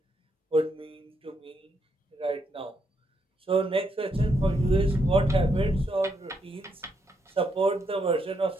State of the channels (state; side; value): normal; both; correlation 0.78